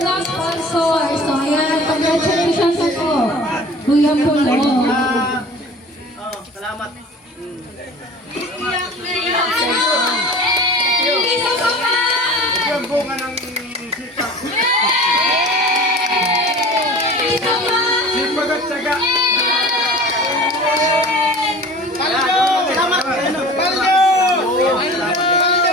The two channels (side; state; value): both; normal; correlation 0.41